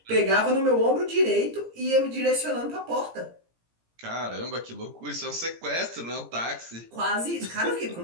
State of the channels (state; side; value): late; left; 17 ms